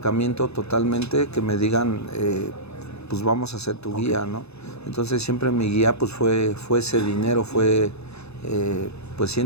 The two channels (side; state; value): right; late; 0.79 ms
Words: totalmente que me digan, pues vamos a ser tu guía, ¿no? Entonces siempre mi guía pues fue ese dinero, fue pues